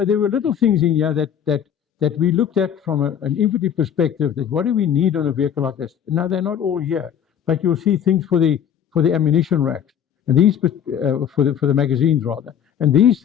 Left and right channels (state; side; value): quieter; right; 8.8 dB